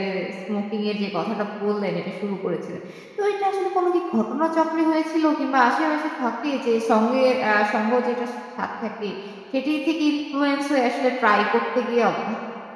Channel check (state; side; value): identical; both; correlation 1.00